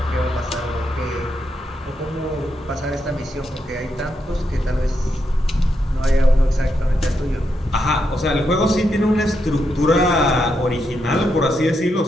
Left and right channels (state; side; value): normal; both; correlation 0.82